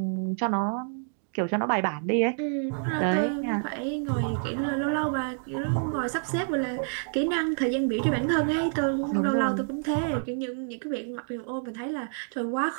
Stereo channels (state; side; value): silent; left; digital silence